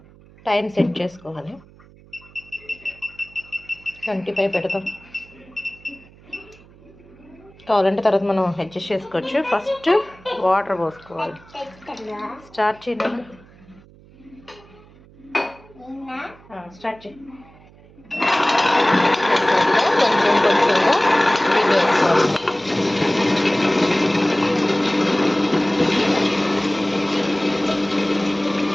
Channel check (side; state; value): right; noise; hum, 25 dB below the sound